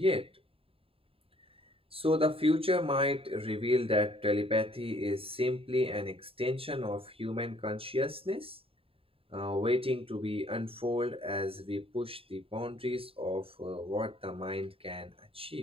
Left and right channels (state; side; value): late; left; 0.27 ms